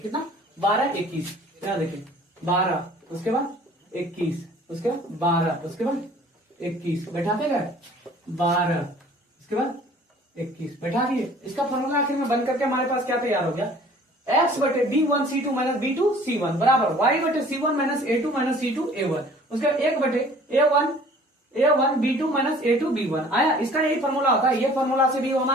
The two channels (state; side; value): normal; both; correlation 0.51